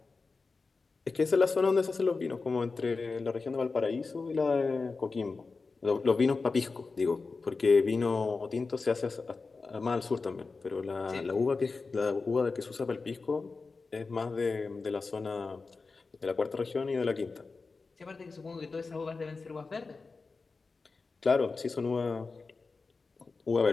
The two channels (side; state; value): right; quieter; 4.2 dB